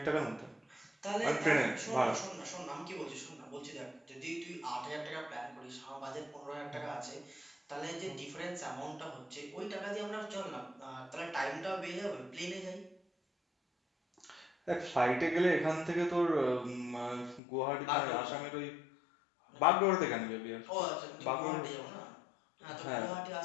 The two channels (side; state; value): right; drops out; at 17.4 s